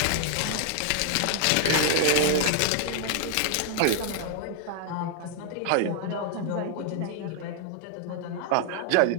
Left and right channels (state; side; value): different; both; correlation 0.00